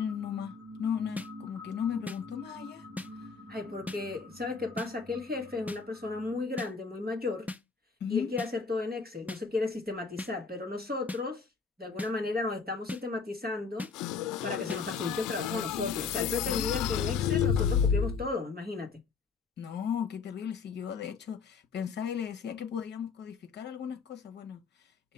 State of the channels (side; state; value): right; quieter; 5.2 dB